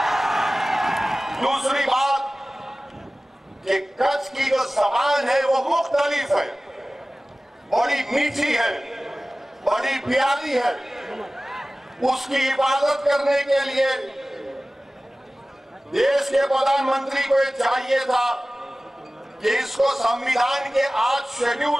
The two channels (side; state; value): both; normal; correlation 0.97